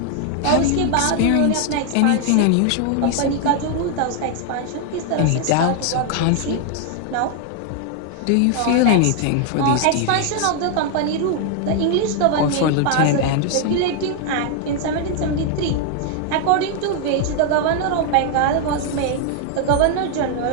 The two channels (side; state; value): both; different; correlation 0.00